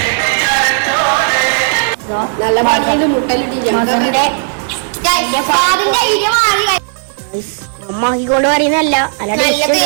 നല്ല മകന്റെ അമ്മാക്കിക്കൊണ്ട് പറയുന്നല്ല,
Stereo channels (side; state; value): left; silent; digital silence